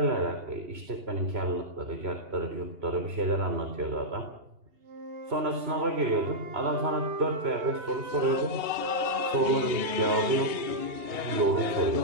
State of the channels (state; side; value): late; left; 2.8 ms